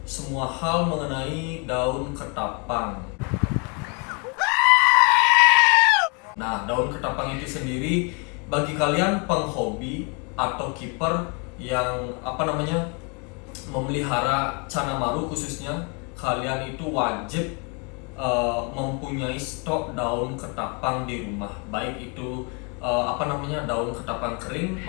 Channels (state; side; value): quieter; right; 34.1 dB